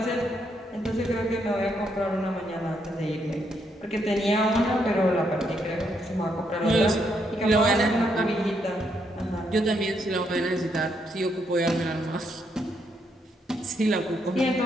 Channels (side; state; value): both; normal; correlation 0.76